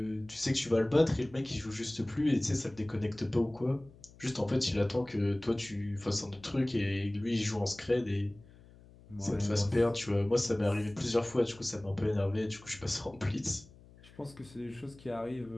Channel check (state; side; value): noise; left; hum, 23 dB below the sound